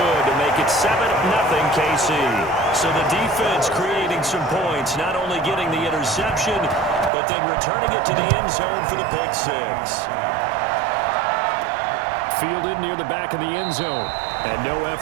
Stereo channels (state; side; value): drops out; left; at 7.1 s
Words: to make it 7-0 KC. So the defense creating some points, not only getting the interception, but then returning it to the end zone for the pick six. Fielded near the back of the end zone. And no